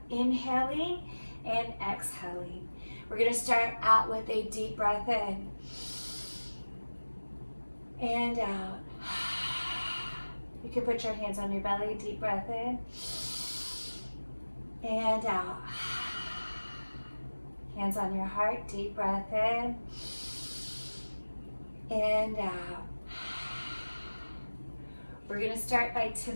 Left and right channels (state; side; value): inverted; both; correlation -1.00